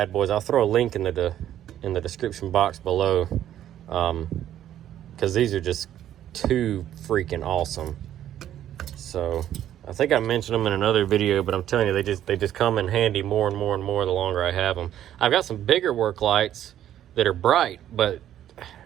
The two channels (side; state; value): left; quieter; 11.4 dB